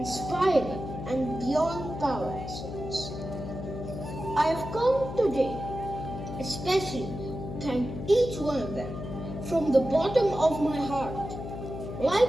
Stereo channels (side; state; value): left; noise; hum, 8 dB below the sound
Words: and beyond power excellence. I have come today especially to thank each one of them from the bottom of my heart.